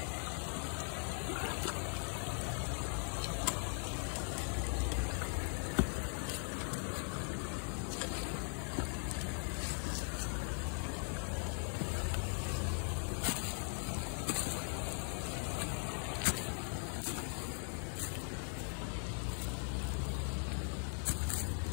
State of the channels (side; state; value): right; silent; 51 dB below the other